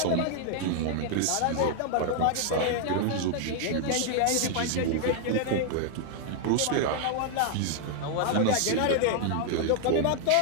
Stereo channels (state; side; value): different; both; correlation 0.00